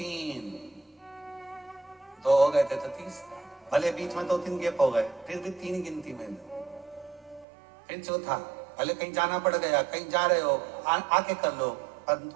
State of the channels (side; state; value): left; drops out; at 7.5 s